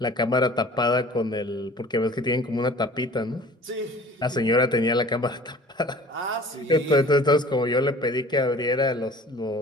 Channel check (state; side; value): normal; both; correlation 0.47